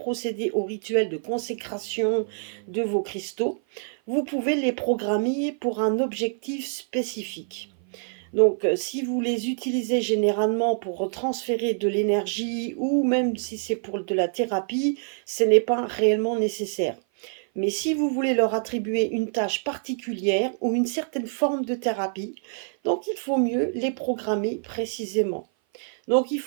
au rituel de consécration de vos cristaux, vous pouvez les programmer pour un objectif spécifique. Donc, si vous les utilisez généralement pour transférer de l'énergie ou même si c'est pour de la thérapie, ce n'est pas réellement nécessaire. Mais si vous voulez leur attribuer une tâche particulière ou une certaine forme de thérapie, donc il faut mieux les programmer précisément. Donc il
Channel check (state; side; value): silent; left; 56 dB below the other